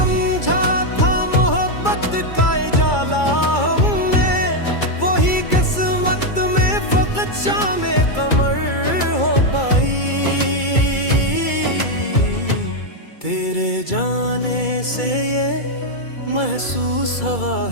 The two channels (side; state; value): right; late; 2.3 ms